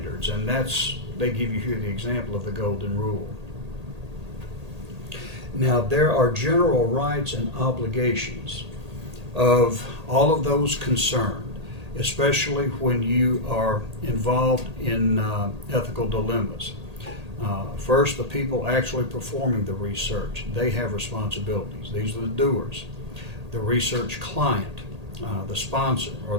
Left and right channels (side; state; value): left; late; 1.8 ms